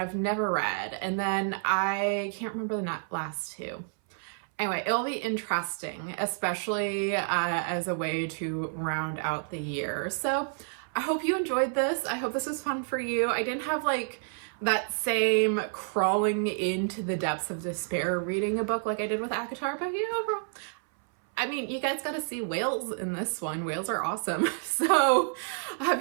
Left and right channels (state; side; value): silent; left; 58 dB below the other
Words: I've never read. And then I can't remember the last 2. Anyway, it'll be interesting, especially as a way to round out the year. So I hope you enjoyed this. I hope this was fun for you. I didn't have like that same crawling into the depths of despair reading a book like I did with ACOTAR, but you know, I mean, you guys got to see whales in this one. Whales are awesome. So